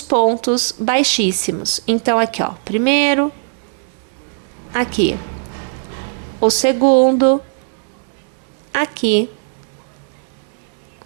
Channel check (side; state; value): left; silent; digital silence